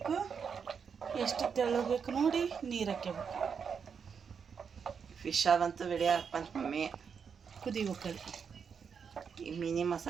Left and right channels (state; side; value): quieter; left; 6.5 dB